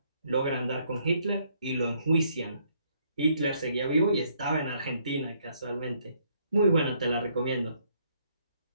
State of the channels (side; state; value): both; inverted; correlation -0.69